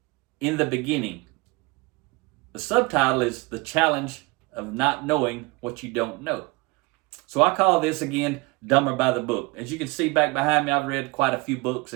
In the Beginning. The subtitle is The Challenge of Not Knowing What You Don't Know. So I call this, again, Dumber by the Book. As you can see back behind me, I've read quite a few books,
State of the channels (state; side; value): quieter; left; 25.6 dB